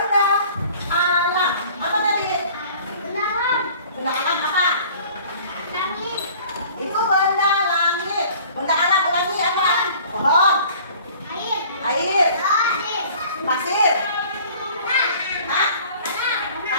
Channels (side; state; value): both; inverted; correlation -0.49